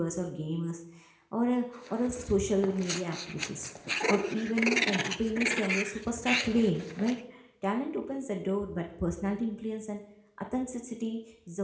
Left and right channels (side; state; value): both; identical; correlation 1.00